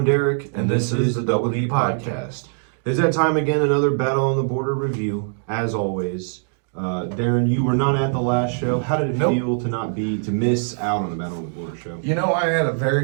Derek, and this is the Double D Podcast. It's that time again, another Battle on the Border review, as always. Darren, you were not at the last show. How did it feel to miss out on the Battle on the Border show? You know, I had a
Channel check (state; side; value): silent; left; digital silence